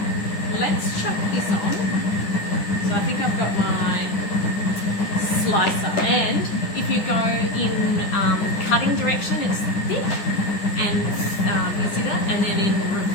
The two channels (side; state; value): right; late; 10 ms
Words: let's chuck this on. So I think I've got my slicer, and if you go in cutting direction, it's thick, and you see that, and then in